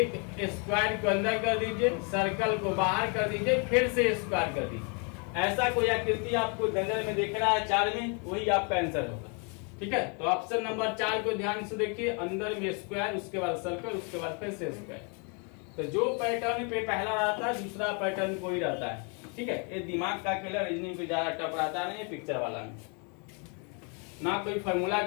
स्क्वायर को अंदर कर दीजिए, सर्कल को बाहर कर दीजिए, फिर से स्क्वायर कर दीजिए। ऐसा कोई आकृति आपको नजर में दिख रहा है 4 में, वही आपका आंसर होगा। ठीक है, तो ऑप्शन नंबर 4 को ध्यान से देखिए, अंदर में स्क्वायर, उसके बाद सर्कल, उसके बाद फिर से स्क्वायर। तो जो पैटर्न पे पहला रहता है दूसरा पैटर्न कोई रहता है। ठीक है, ये दिमाग का खेल, रीजनिंग पे ज्यादा टफ रहता नहीं, पिक्चर वाला में ना कोई फार्मूला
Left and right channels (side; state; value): right; quieter; 36.0 dB